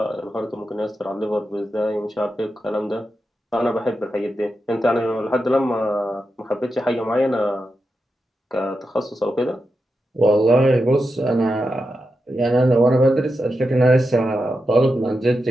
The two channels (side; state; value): both; normal; correlation 0.88